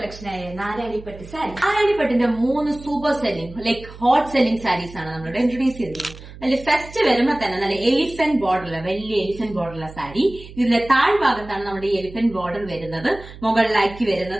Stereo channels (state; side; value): noise; right; hum, 16 dB below the sound